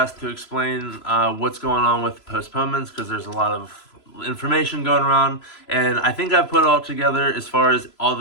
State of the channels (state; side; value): late; right; 3.0 ms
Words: to explain what's going on with postponements because there's a lot of information going around. And I think I put it all together as far as all